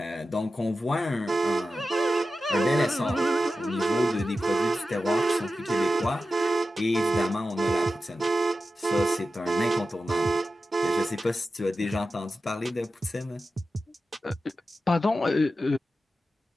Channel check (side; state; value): both; normal; correlation 0.92